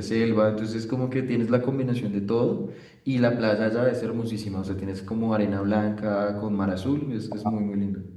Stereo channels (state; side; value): identical; both; correlation 1.00